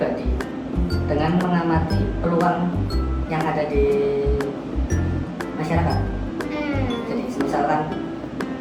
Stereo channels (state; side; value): identical; both; correlation 1.00